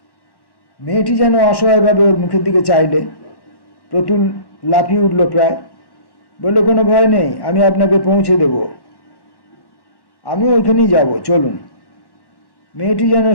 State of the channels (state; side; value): late; right; 1.1 ms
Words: মেয়েটি যেন অসহায়ভাবে ওর মুখের দিকে চাইলে। প্রতুল লাফিয়ে উঠল প্রায়। বললে, কোনো ভয় নেই, আমি আপনাকে পৌঁছে দেব। আমি ওইখানেই যাব, চলুন। মেয়েটি যেন